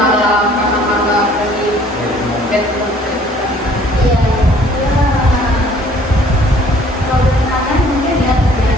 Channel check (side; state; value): both; normal; correlation 0.56